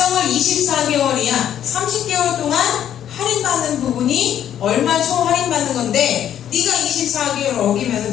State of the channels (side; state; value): right; quieter; 10.3 dB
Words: 24개월이야. 30개월 동안 할인받는 부분이 얼마 총 할인받는 건데 네가 24개월